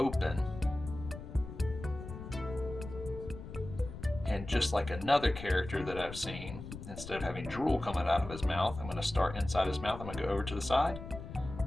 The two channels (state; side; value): noise; left; rumble, 11 dB below the sound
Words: And just like another character that I've seen, instead of having drool coming out of his mouth, I'm going to start inside his mouth. I'm going to go over to the side.